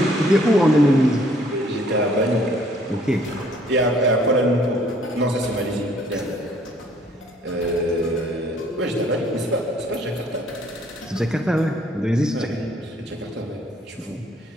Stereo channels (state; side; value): normal; both; correlation 0.61